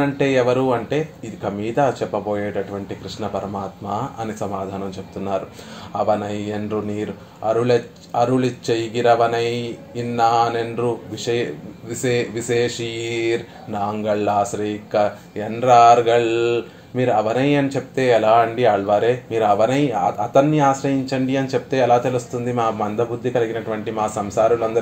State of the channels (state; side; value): identical; both; correlation 1.00